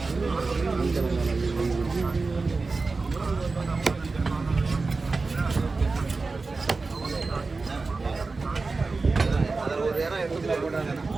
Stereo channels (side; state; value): left; quieter; 3.9 dB